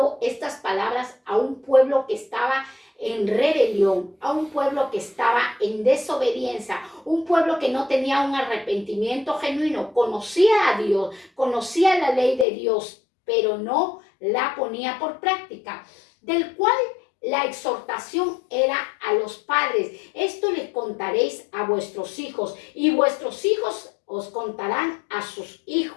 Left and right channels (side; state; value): right; drops out; at 12.5 s